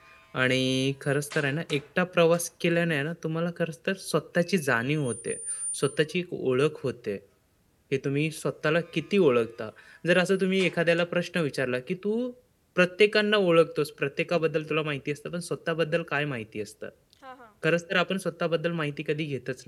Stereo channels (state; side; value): identical; both; correlation 1.00